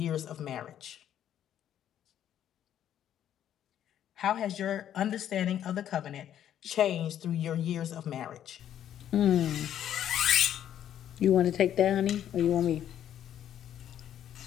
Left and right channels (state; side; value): quieter; right; 10.6 dB